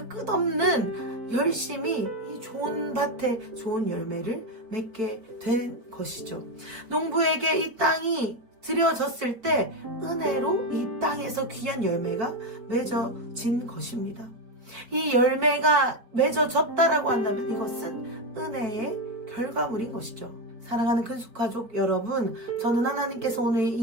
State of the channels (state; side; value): late; left; 4.5 ms